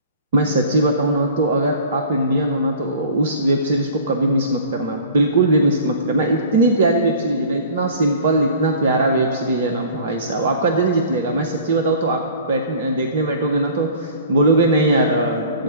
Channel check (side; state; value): both; inverted; correlation -0.45